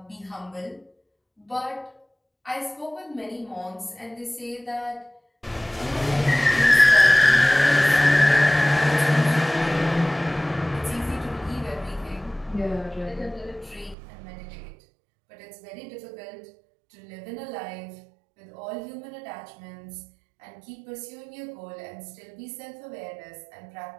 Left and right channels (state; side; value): drops out; left; at 14.0 s